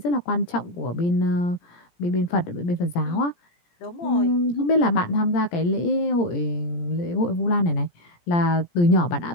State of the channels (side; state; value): right; late; 17 ms